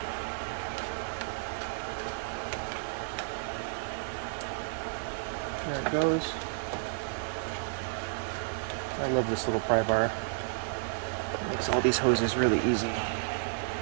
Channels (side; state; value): left; silent; digital silence